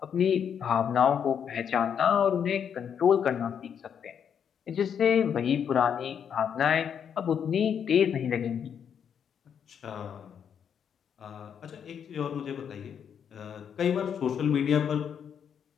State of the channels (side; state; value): right; quieter; 8.0 dB